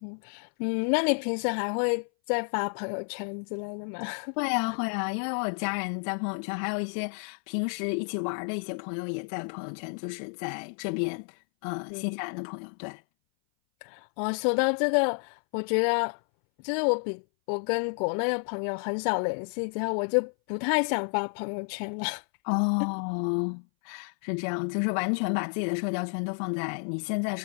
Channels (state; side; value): silent; right; 58 dB below the other